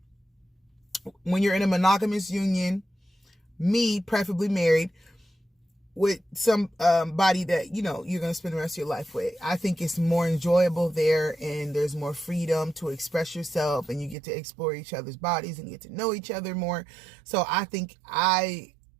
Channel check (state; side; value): drops out; left; at 14.2 s